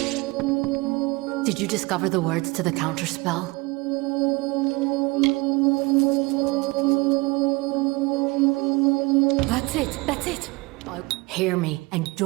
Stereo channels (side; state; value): left; quieter; 24.7 dB